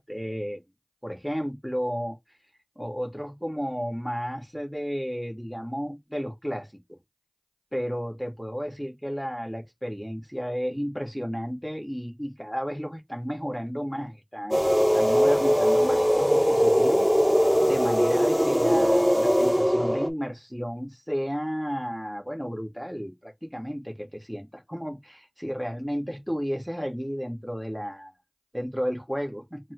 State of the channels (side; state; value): both; identical; correlation 1.00